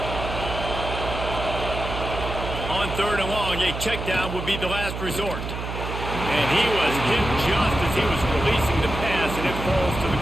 On 3rd and long, a check down would be the last resort. And he was hit just as he was releasing the pass, and it falls to the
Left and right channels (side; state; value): right; noise; hum, 6 dB below the sound